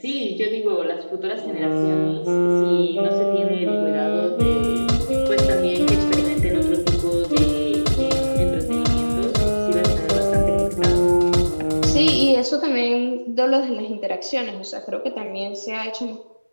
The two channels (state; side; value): inverted; both; correlation -1.00